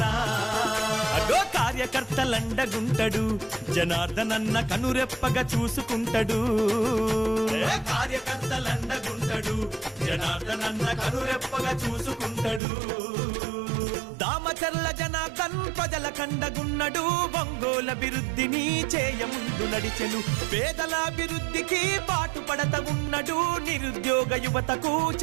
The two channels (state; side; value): drops out; left; at 12.6 s